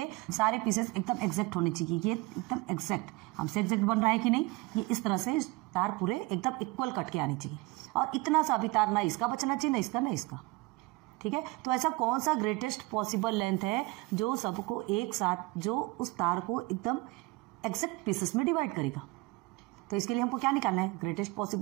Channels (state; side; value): quieter; left; 22.8 dB